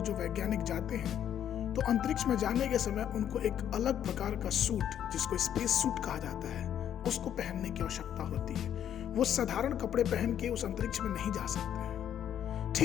जो वैज्ञानिक जाते हैं तो अंतरिक्ष में जाने के समय उनको एक अलग प्रकार का सूट, जिसको स्पेस सूट कहा जाता है, उसको पहनने की आवश्यकता होती है। वो साधारण कपड़े पहन के उस अंतरिक्ष में नहीं जा सकते हैं।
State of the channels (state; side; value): quieter; right; 9.9 dB